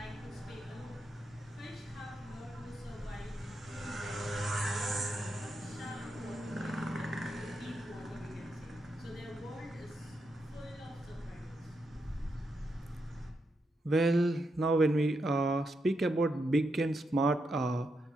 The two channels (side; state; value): both; normal; correlation 0.83